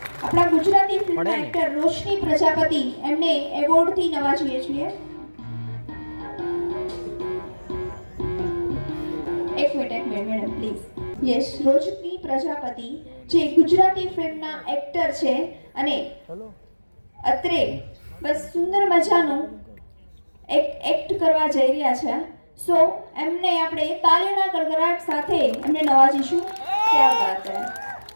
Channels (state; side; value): inverted; both; correlation -1.00